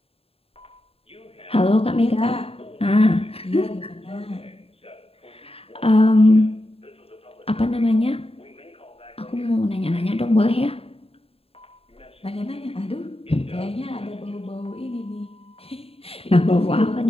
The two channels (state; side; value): late; right; 0.28 ms